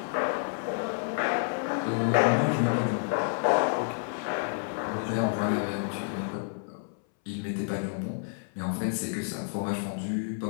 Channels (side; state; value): right; silent; 58 dB below the other